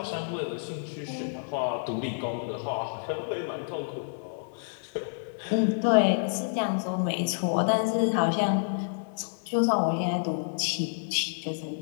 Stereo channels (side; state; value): right; silent; 59 dB below the other